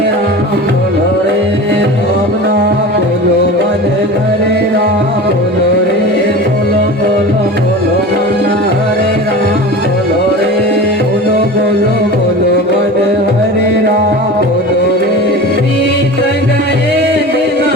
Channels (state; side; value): normal; both; correlation 0.33